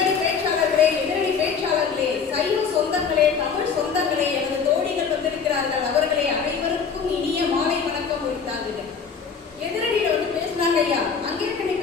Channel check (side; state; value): right; quieter; 6.0 dB